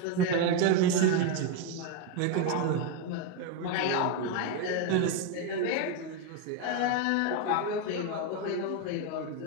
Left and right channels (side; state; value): both; different; correlation 0.02